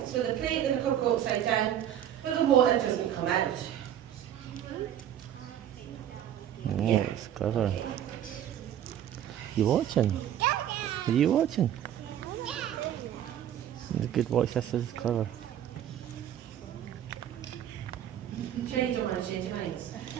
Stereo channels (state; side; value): quieter; left; 10.6 dB